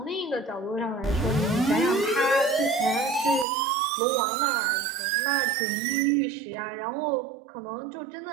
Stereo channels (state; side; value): drops out; left; at 3.5 s